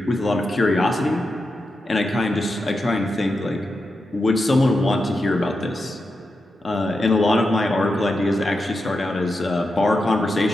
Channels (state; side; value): normal; both; correlation 0.88